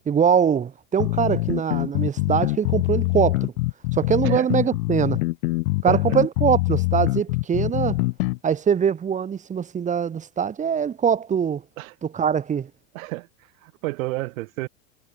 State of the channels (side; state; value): both; normal; correlation 0.17